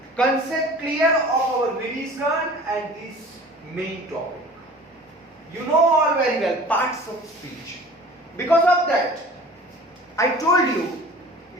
concept clear of our revision and this main topic. You know all very well parts of speech. Because of that, I told you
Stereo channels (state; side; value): normal; both; correlation 0.43